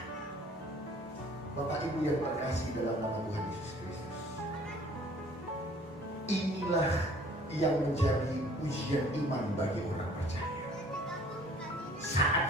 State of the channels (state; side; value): normal; both; correlation 0.54